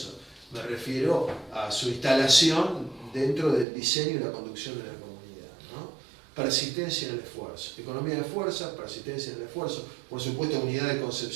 me refiero a su instalación dentro del diseño y la conducción de la comunidad, ¿no? Persistencia en el esfuerzo, economía de fuerza, persistencia en el esfuerzo, por supuesto unidad de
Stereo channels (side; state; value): left; drops out; at 3.7 s